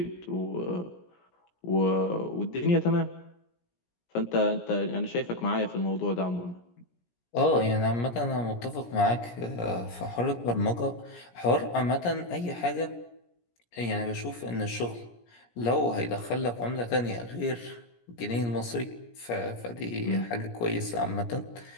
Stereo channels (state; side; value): late; right; 17 ms